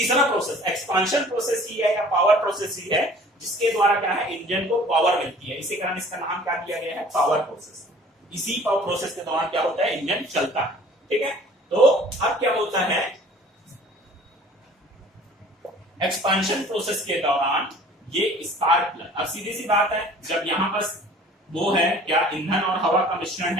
प्रोसेस एक्सपांशन प्रोसेस ही है या पावर प्रोसेस ही है, जिसके द्वारा क्या है, इंजन को पावर मिलती है। इसी कारण इसका नाम क्या दिया गया है, पावर प्रोसेस। इसी पावर प्रोसेस के दौरान क्या होता है, इंजन चलता है। ठीक है, तो अब क्या होता है, एक्सपांशन प्रोसेस के दौरान ये स्पार्क प्लग, अब सीधी सी बात है, जब यहां पर वो है क्या, ईंधन और हवा का मिश्रण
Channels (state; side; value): normal; both; correlation 0.49